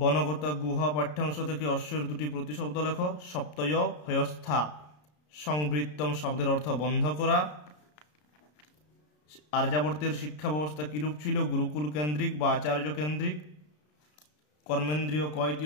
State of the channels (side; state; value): right; late; 33 ms